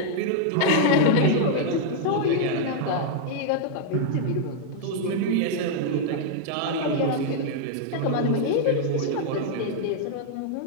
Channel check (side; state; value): both; different; correlation -0.01